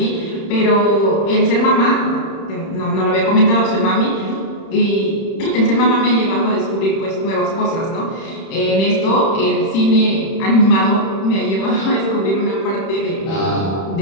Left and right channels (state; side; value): late; right; 31 ms